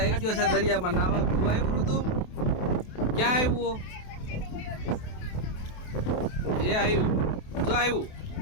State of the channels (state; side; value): late; right; 28 ms